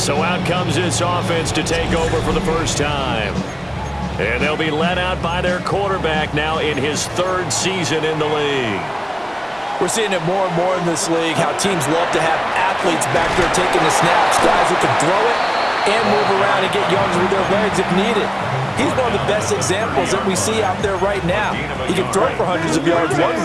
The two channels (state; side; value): identical; both; correlation 1.00